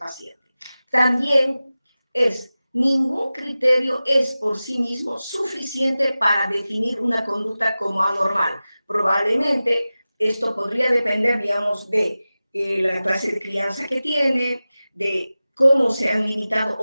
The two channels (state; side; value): inverted; both; correlation -0.96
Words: También ningún criterio es por sí mismo suficiente para definir una conducta como anormal. Probablemente esto podría depender, digamos, de la clase de crianza que tiene, de cómo se han limitado